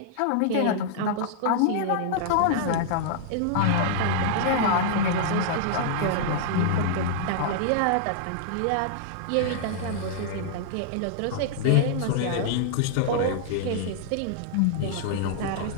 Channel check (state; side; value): different; both; correlation -0.01